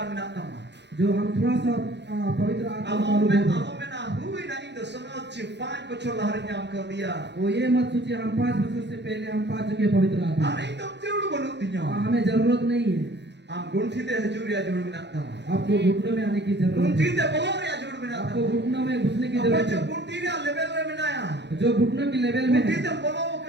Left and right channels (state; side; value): late; left; 0.50 ms